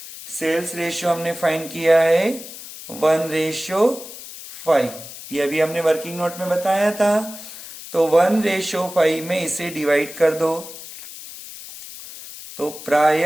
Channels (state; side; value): noise; left; hiss, 13 dB below the sound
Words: सेल्स रेशियो हमने फाइंड किया है 1:5। ये अभी हमने वर्किंग नोट में बताया था। तो 1:5 में इसे डिवाइड कर दो। तो